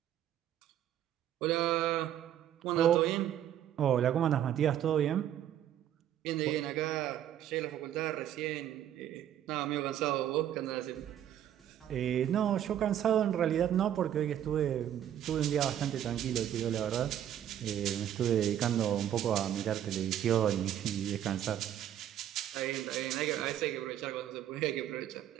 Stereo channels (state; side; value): quieter; left; 10.9 dB